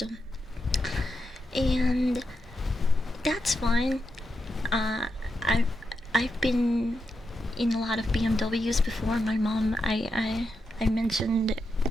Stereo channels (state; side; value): normal; both; correlation 0.85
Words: and that's fine. I've been in a lot of BMWs before. My mom, I mentioned